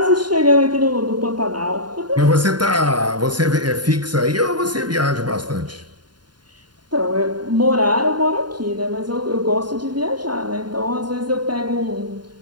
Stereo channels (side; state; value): left; late; 0.71 ms